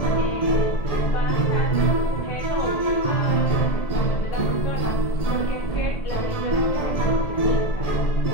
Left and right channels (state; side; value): late; right; 1.7 ms